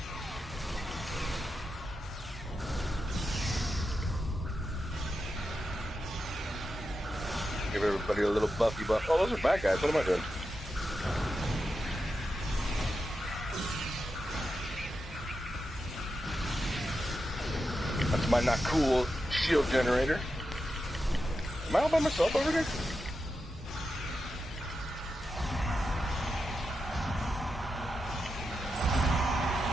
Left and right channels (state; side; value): normal; both; correlation 0.88